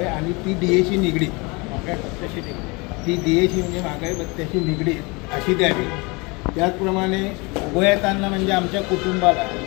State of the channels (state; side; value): quieter; right; 27.3 dB